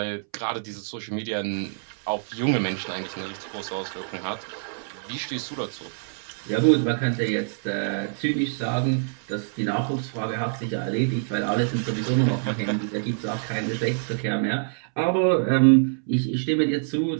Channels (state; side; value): silent; left; 61 dB below the other